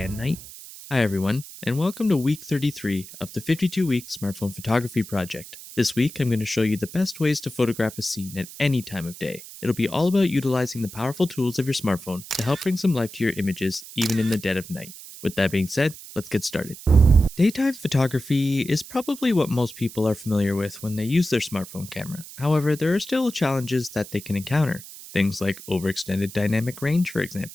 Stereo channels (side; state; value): right; noise; hiss, 15 dB below the sound